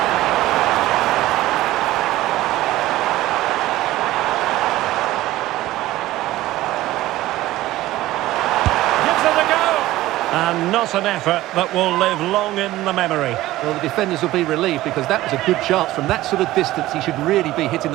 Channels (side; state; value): left; quieter; 16.3 dB